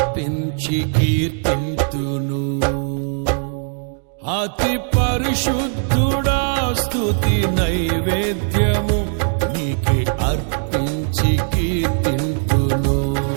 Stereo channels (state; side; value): silent; left; 61 dB below the other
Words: కీర్తింతును. అతి పరిశుద్ధుడా స్తుతి నైవేద్యము నీకే అర్పించి కీర్తింతును.